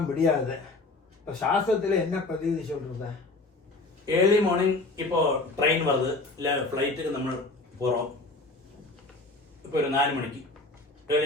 முடியாது. இப்போ சாஸ்திரத்தில் என்ன பிரதிநிதி சொல்றது? ஏர்லி மார்னிங் இப்போ ட்ரெயின் வருது இல்லை ஃப்ளைட்டுக்கு நம்ம போகிறோம். இப்போ ஒரு 4 மணிக்கு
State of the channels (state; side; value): quieter; right; 3.2 dB